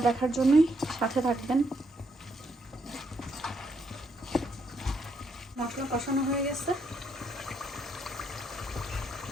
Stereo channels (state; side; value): normal; both; correlation 0.75